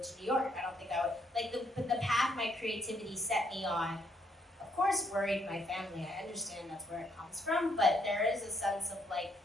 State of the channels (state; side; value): normal; both; correlation 0.71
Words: to New York. I don't think I would, the path my creativity set me on, of course, worried my family. I understand that's where it comes from, but there is a sense of like,